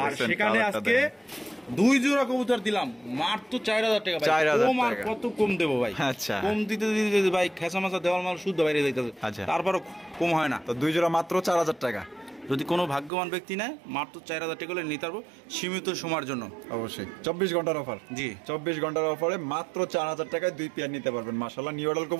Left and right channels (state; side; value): drops out; left; at 13.1 s